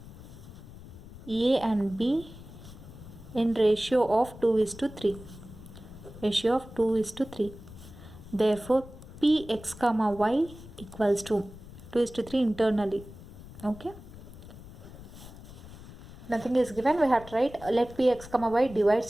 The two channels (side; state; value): left; noise; rumble, 16 dB below the sound